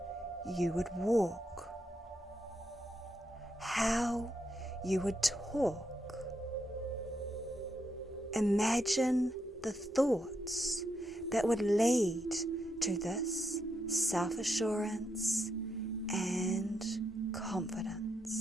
you would walk, how you would talk. Imagine the thoughts that would lead to this self-assurance and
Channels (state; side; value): normal; both; correlation 0.81